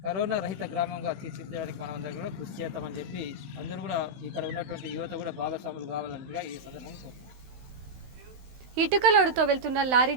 కరోనా రహిత గ్రామంగా తీర్చిదిద్దడానికి మనం అందరూ కూడా కృషి చేద్దామని చెప్పి అందరూ కూడా ఇక్కడ ఉన్నటువంటి యువత కూడా భాగస్వాములు కావాలన్నట్టుగా ఈ సందర్భంగా కోరుతున్నాను. ఇటుకలోడుతో వెళ్తున్న లారీ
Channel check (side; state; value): left; late; 16 ms